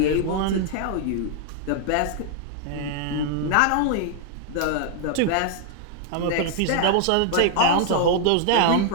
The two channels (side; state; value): both; different; correlation -0.01